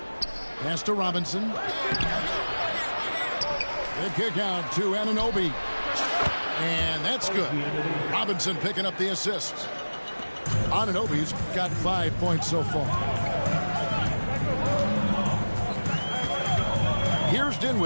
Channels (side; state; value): both; inverted; correlation -1.00